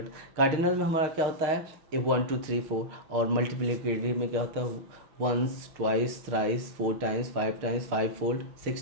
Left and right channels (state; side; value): late; left; 6.4 ms